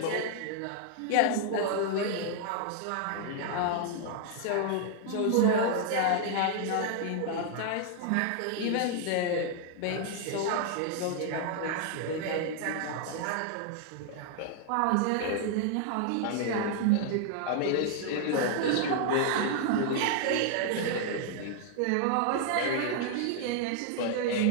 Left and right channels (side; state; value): both; different; correlation 0.00